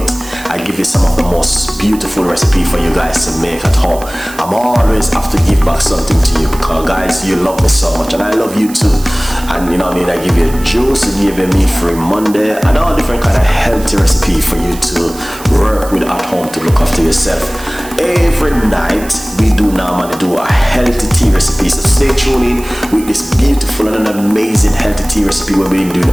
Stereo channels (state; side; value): noise; right; hiss, 16 dB below the sound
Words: I give you some of the most beautiful recipe for you guys to make at home. I'm always have to give back something to you because guys, you love me so much and I love you too. And you know what I mean, I give you juice, I give you meat-free Monday and all different kind of healthy recipe for you to work with at home to look after yourself. Every night we do normally do a healthy tea recipe, so stay tuned in with this beautiful and an amazing healthy tea recipe where we do